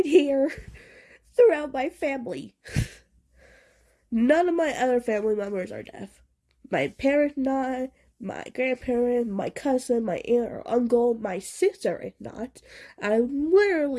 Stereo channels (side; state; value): both; identical; correlation 1.00